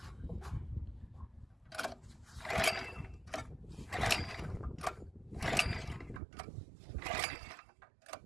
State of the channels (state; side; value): drops out; left; at 6.2 s